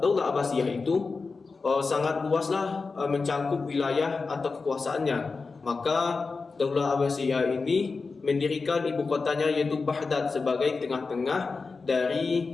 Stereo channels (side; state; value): right; quieter; 4.3 dB